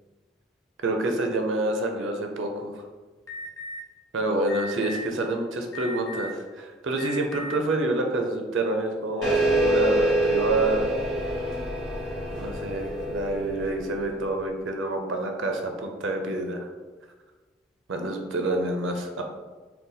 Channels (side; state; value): both; normal; correlation 0.43